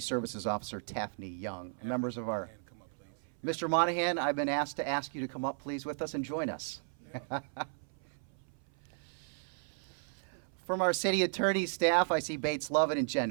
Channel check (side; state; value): left; silent; 55 dB below the other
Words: Officer Taffney Young. Members of our... Mr. Monahan, I've been asked to ask you to come up, please, with us and join us. From our city attorney staff, I see Bates Lovett and Jen